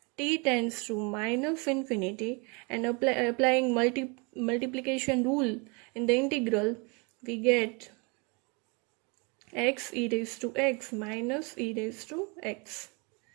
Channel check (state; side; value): quieter; left; 31.3 dB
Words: t tends to minus infinity, and applying multiplication rule in the integral, we get x e raised to x minus e raised to x,